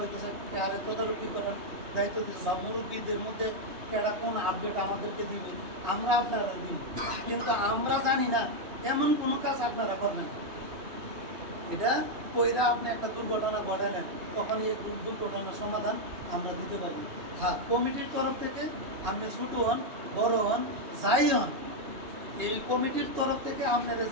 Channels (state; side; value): late; left; 3.5 ms